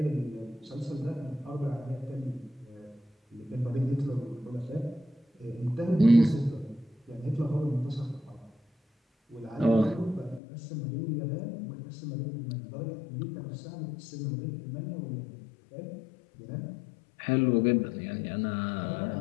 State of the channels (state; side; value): drops out; right; at 10.4 s